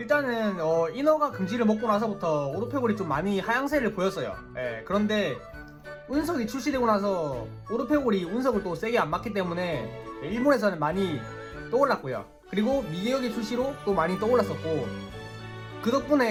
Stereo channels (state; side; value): identical; both; correlation 1.00